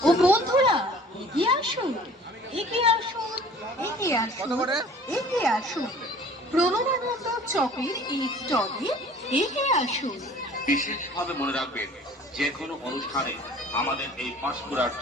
ও বন্ধুরা, এগিয়ে আসুন, এগিয়ে আসুন, এগিয়ে আসুন, কত করে? এগিয়ে আসুন, প্রণবানন্দ চকের এই স্টলে এগিয়ে আসুন। বিশেষভাবে মনে রাখবেন, যে কোনো অনুষ্ঠানে আমাদের এই পাঁশকুড়ার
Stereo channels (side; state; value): both; normal; correlation 0.48